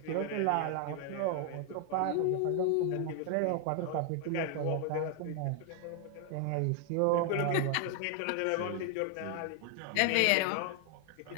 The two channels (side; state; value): both; different; correlation 0.00